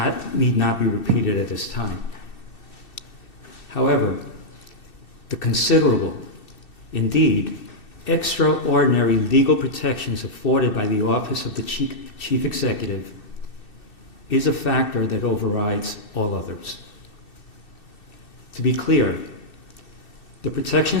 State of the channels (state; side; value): late; right; 2.6 ms